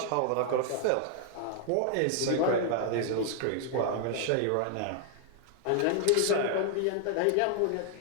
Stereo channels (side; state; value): both; different; correlation 0.00